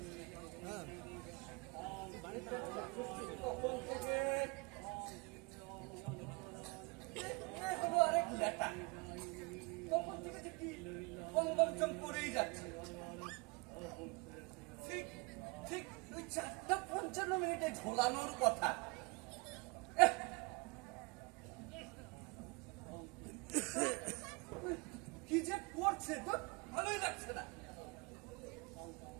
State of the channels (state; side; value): quieter; left; 28.1 dB